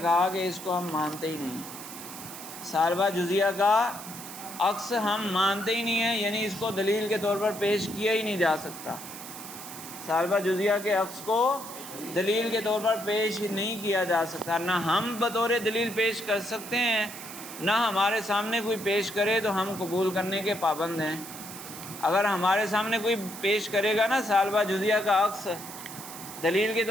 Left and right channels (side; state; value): right; noise; hiss, 12 dB below the sound